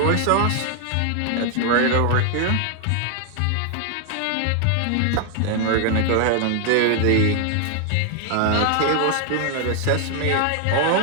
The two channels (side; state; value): both; different; correlation 0.00